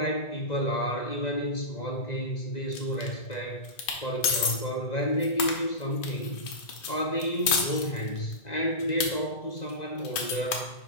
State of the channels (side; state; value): right; late; 2.4 ms